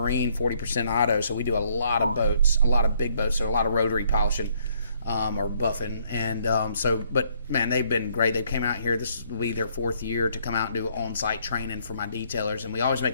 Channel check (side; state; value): both; inverted; correlation -0.67